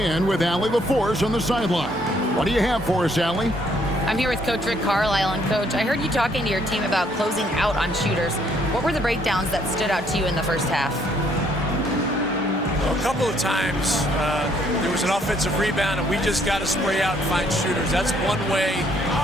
with Allie LaForce on the sideline. What do you have for us, Allie? I'm here with Coach Rick Carlisle. And Coach, I heard you talking to your team about closing out on shooters. What were the breakdowns that stood out to you in the first half? A couple of times there was an offensive rebound and we just got to spray out and find shooters. That's one way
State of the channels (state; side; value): normal; both; correlation 0.67